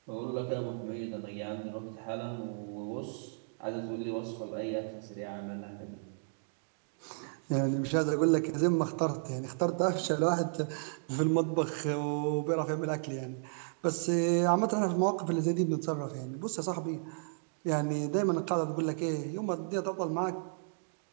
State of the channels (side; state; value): left; silent; digital silence